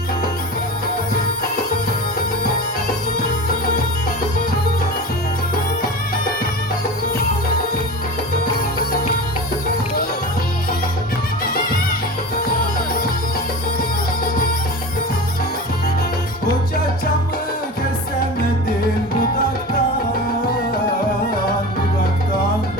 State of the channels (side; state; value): both; normal; correlation 0.30